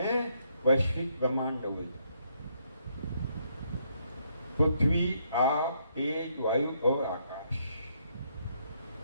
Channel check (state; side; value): inverted; both; correlation -0.73